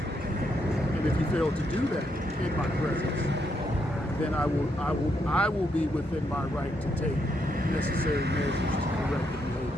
if you fail to do that in my presence, then I will be within my right to take necessary measures to correct the behavior.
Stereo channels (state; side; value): normal; both; correlation 0.78